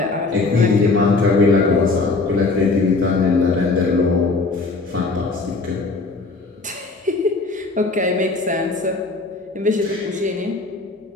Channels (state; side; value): quieter; right; 3.7 dB